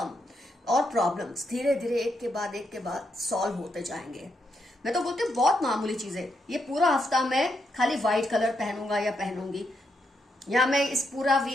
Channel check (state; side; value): normal; both; correlation 0.80